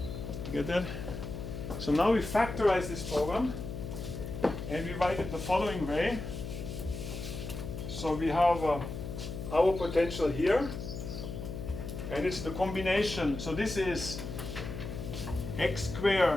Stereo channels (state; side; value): noise; left; hum, 7 dB below the sound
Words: You get that? So now we factorize this program, and we write it the following way. So we have our potential here, and it's the combination. So this is x